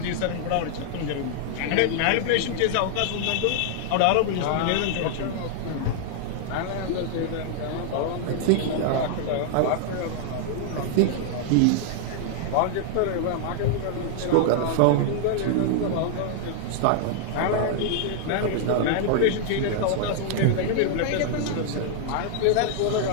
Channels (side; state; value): both; different; correlation -0.01